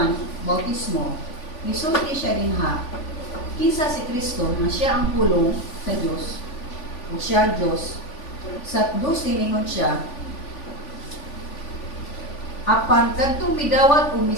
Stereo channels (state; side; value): late; right; 3.5 ms